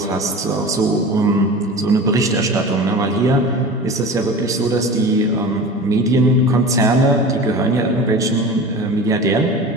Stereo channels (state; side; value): normal; both; correlation 0.34